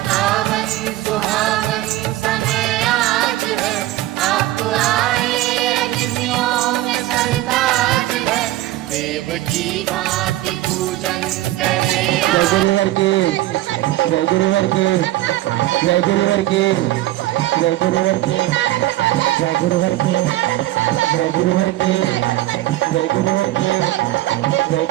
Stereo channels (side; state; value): left; quieter; 16.1 dB